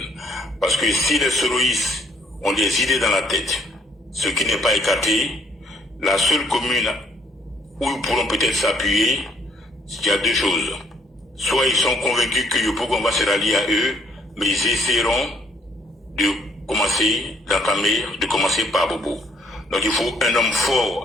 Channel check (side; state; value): both; normal; correlation 0.66